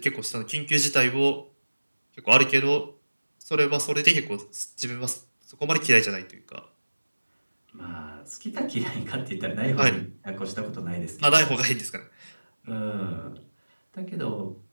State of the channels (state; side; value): inverted; both; correlation -1.00